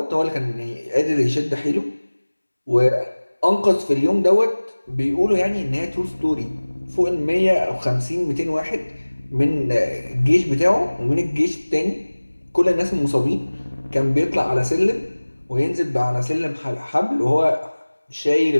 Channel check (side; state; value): both; inverted; correlation -1.00